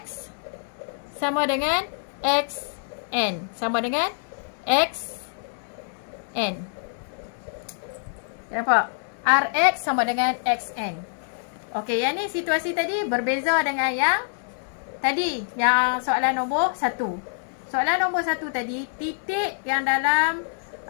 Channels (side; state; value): right; silent; digital silence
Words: sama dengan XN. Sama dengan XN. Nampak? RX sama dengan XN. Okey, yang ni situasi tadi berbeza dengan yang tadi, yang soalan nombor 1. Soalan nombor 1 tadi, titik yang dalam